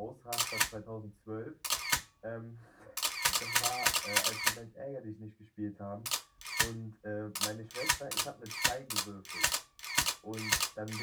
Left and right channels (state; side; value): identical; both; correlation 1.00